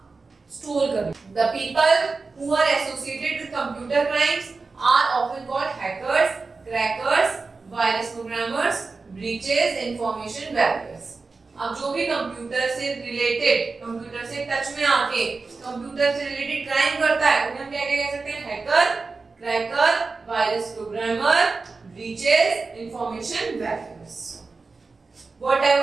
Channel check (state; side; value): quieter; left; 4.1 dB